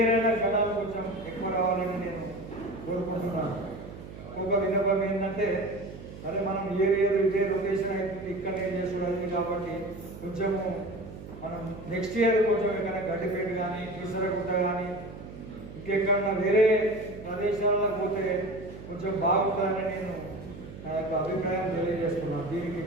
అయినా జనాలు కొంచెం ఎక్కువ రావాలని నేను కోరుకుంటున్నాను. ఇంకొక విన్నపం ఏంటంటే అదే మనం ఇయర్ ఇదే రొటేషన్ అవుతుంది ఇక్కడనే చేసుకోవడానికి కాబట్టి కొంచెము మనం నెక్స్ట్ ఇయర్ కొంచెం ఎక్కడైనా గడ్డిపేట కానీ కీసరగుట్ట కానీ ఇంకెక్కడన్నా వేరే ప్రదేశాల్లో పోతే కొంచెం బాగుంటుందని నేను నా యొక్క అభిప్రాయం తెలియజేస్తున్నాను. దీనికి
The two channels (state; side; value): noise; right; hum, 13 dB below the sound